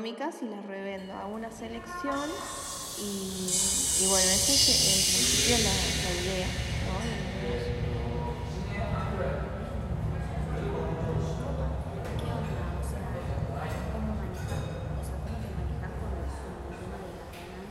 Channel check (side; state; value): both; identical; correlation 1.00